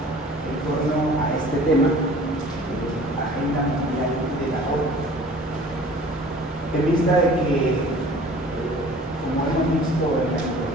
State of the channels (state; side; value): normal; both; correlation 0.47